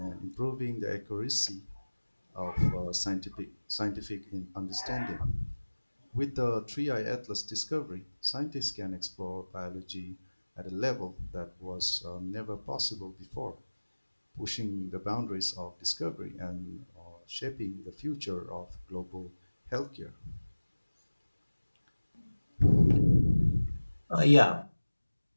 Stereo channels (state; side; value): inverted; both; correlation -1.00